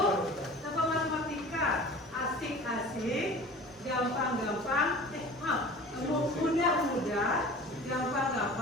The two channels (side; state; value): both; normal; correlation 0.41